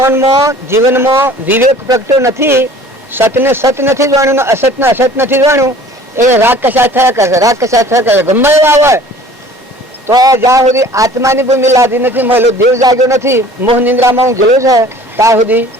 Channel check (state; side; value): normal; both; correlation 0.48